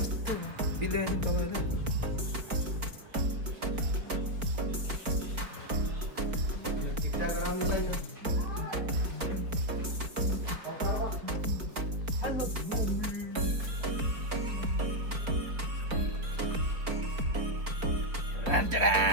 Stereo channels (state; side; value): late; left; 4.4 ms